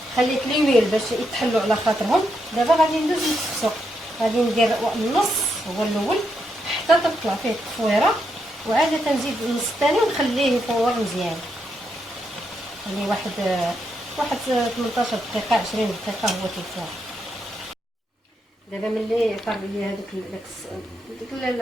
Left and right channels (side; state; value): both; normal; correlation 0.81